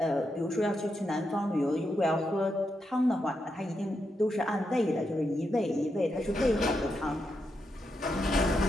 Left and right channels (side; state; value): both; normal; correlation 0.84